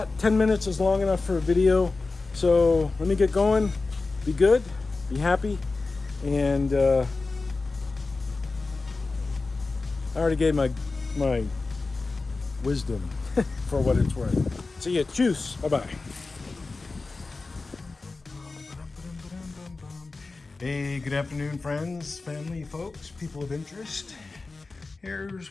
10 minutes is long enough for a video. So let me get going. Be good, be happy, and I already gave my wisdom for what it's worth. See ya. Cheers. Bye-bye. Hey, good afternoon, friends, family, folks, people of interest.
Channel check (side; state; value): right; quieter; 3.7 dB